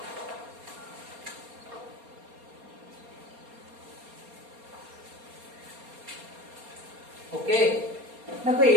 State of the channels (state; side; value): late; left; 4.3 ms